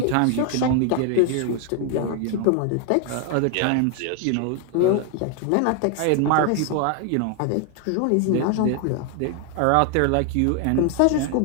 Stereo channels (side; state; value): both; different; correlation 0.01